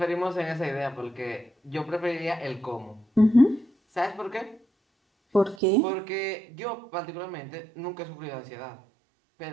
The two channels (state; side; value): drops out; left; at 5.6 s